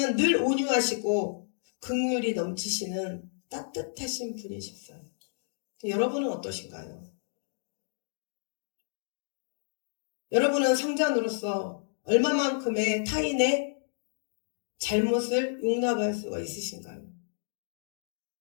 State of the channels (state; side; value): silent; right; digital silence